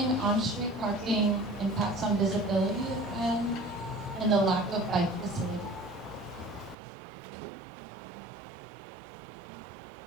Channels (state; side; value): drops out; left; at 6.8 s